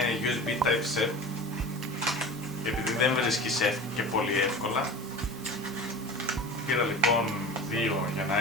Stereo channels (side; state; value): both; normal; correlation 0.35